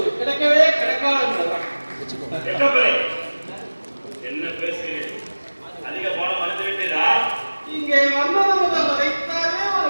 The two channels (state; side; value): inverted; both; correlation -1.00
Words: கிடைக்கவே கிடைக்காது என்பதுதான். என்ன பேசுகிறேன்? அதிக பாடம் மறந்து விட்டதா? இங்கே வந்தது முதல் வரைத்தானே ஒரு